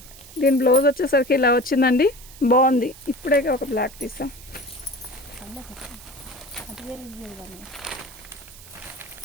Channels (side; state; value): right; noise; hiss, 19 dB below the sound